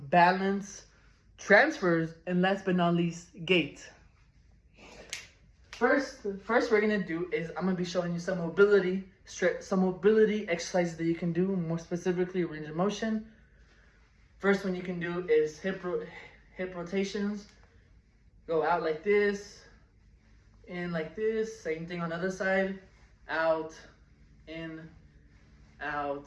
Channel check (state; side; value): identical; both; correlation 1.00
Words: transfers, and last but not least, gait. First we're gonna do is I'm gonna be showing you some mobility exercises that you can do, more specifically range of motion. First one you can do is hip rotations. Go out like this, in like this. Same thing on the other side. Out, in,